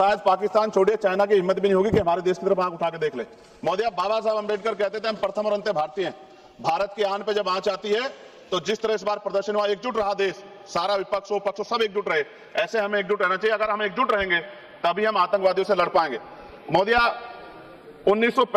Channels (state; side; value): identical; both; correlation 1.00